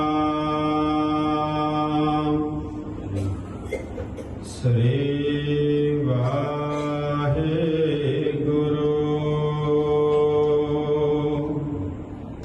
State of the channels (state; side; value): identical; both; correlation 1.00